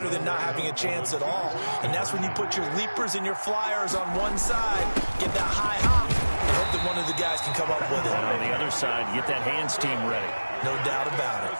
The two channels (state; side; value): inverted; both; correlation -1.00